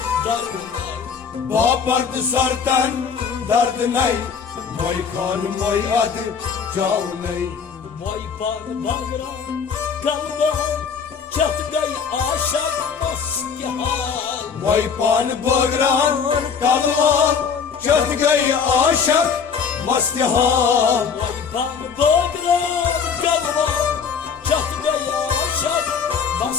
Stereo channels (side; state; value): right; quieter; 6.3 dB